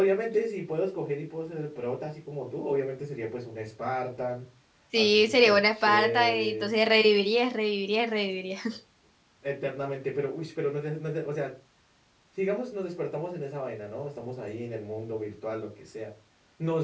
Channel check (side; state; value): both; identical; correlation 1.00